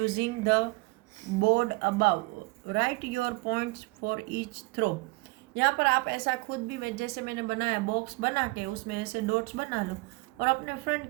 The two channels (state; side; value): quieter; left; 25.0 dB